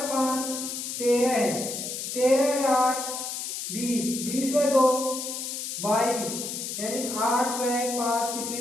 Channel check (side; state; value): left; noise; hiss, 5 dB below the sound